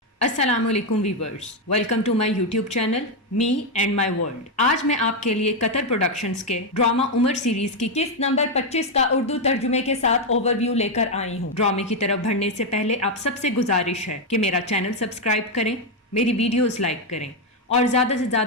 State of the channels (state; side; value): normal; both; correlation 0.04